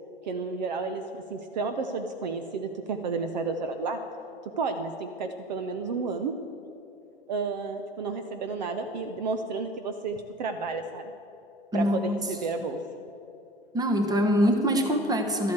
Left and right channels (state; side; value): normal; both; correlation 0.40